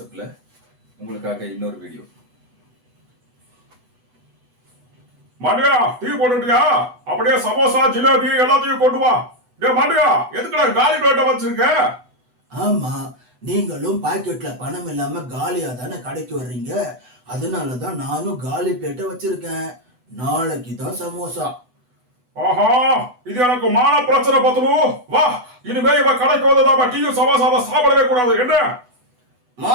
உங்களுக்காக இன்னொரு வீடியோ. மாண்டியா டீ போட்டுட்டியா? அப்படியே சமோசா ஜிலேபி எல்லாத்தையும் கொண்டு வா. டே மாண்டியா, எதுக்குடா காலி பிளேட்டை வச்சிருக்க? ஆமா, நீங்களும் பாக்கெட்ல பணம் இல்லாம காலியா தானே கடைக்கு வர்றீங்க. அதனாலதான் நானும் காலி பிளேட்டை வச்சிருக்கேன். நாளைக்கு தான் சமோசா. ஆஹா, இது எனக்கு மான பிரச்சனை பத்துரு. வா, இனிமே இவ கடைக்கு வந்ததாம டீயும் சமோசாவை சாப்பிடவே கூடாது. என்ன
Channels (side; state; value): left; late; 8.1 ms